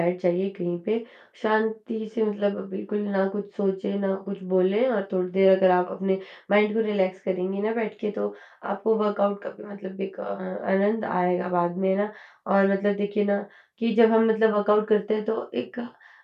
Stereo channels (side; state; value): both; identical; correlation 1.00